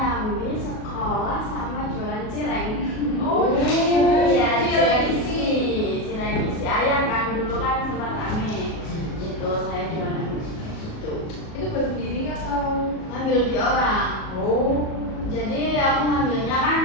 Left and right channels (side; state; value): right; late; 37 ms